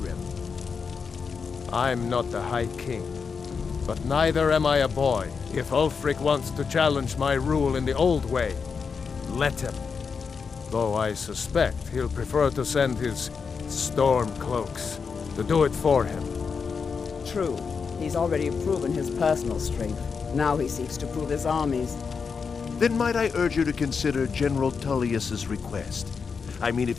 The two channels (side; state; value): right; quieter; 5.6 dB